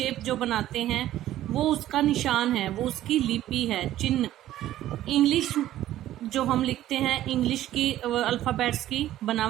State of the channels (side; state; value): left; quieter; 13.5 dB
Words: जो बनाते हैं वो उसका निशान है, वो उसकी लिपि है, चिन्ह। इंग्लिश जो हम लिखते हैं, इंग्लिश की अल्फ़ाबेट्स की